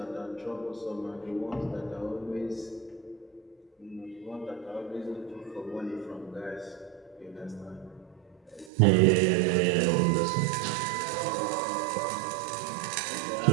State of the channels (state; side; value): drops out; left; at 8.7 s